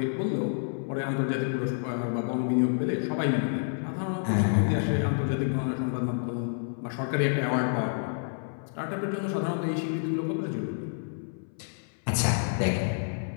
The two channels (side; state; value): right; silent; 59 dB below the other